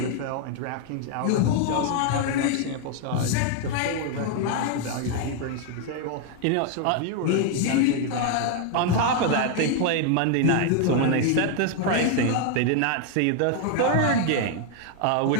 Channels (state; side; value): different; both; correlation 0.00